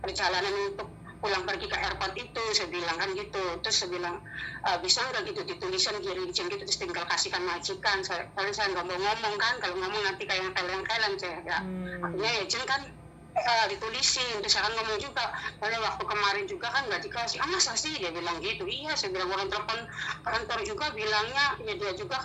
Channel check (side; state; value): both; identical; correlation 1.00